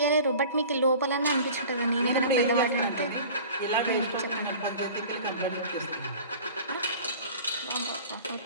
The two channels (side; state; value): both; inverted; correlation -0.42